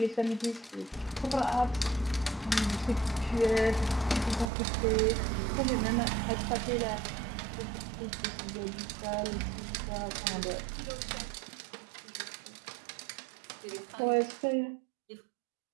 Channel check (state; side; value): drops out; left; at 4.5 s